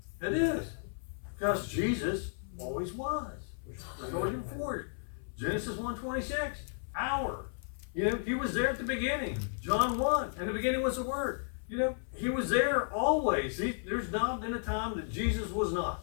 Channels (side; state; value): right; silent; 55 dB below the other